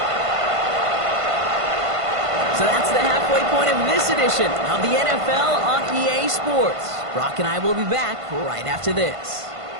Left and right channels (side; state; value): left; late; 1.5 ms